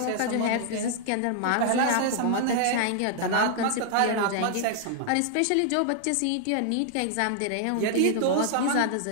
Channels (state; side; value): different; both; correlation -0.01